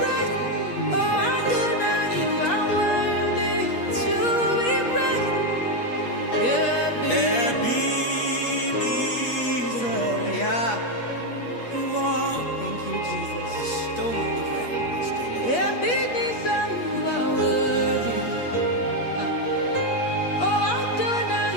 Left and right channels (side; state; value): right; late; 8.4 ms